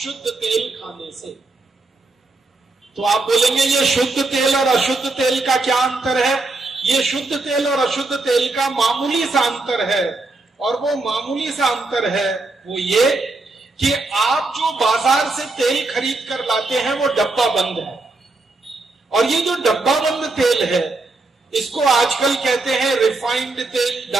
तेल खाने से। तो आप बोलेंगे ये शुद्ध तेल और अशुद्ध तेल का क्या अंतर है? ये शुद्ध तेल और अशुद्ध तेल का मामूली सा अंतर है, और वो मामूली सा अंतर है वो ये कि आप जो बाजार से तेल खरीद कर लाते हैं वो डब्बा बंद है, और ये जो डब्बा बंद तेल है इसको आजकल कहते हैं रिफाइंड तेल,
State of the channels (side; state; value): left; quieter; 3.3 dB